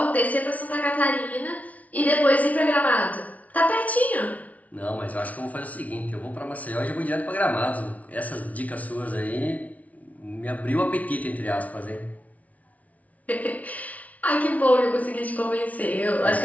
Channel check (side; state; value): right; late; 0.070 ms